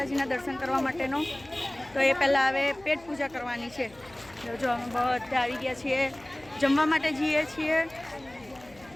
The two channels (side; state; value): left; noise; hum, 25 dB below the sound